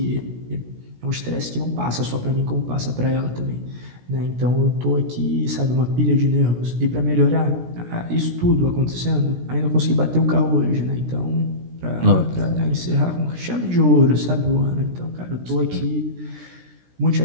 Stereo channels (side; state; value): left; late; 17 ms